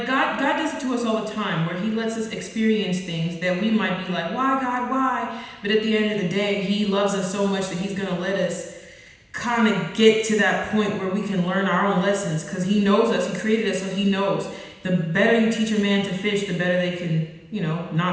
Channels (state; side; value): identical; both; correlation 1.00